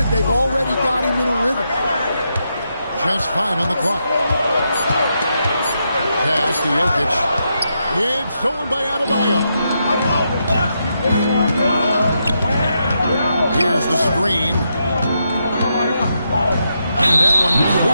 they've already got him in a rhythm. Just 5 on the clock. Pass to Jokic. It's stolen by Adebayo. Here's the screen. And that one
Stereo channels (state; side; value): inverted; both; correlation -0.82